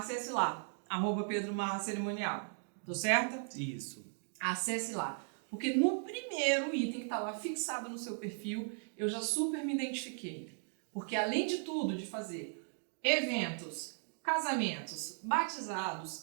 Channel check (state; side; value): silent; left; 53 dB below the other